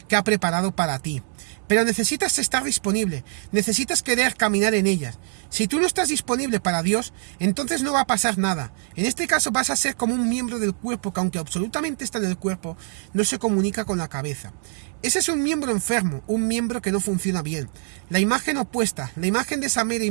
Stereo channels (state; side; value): silent; left; 60 dB below the other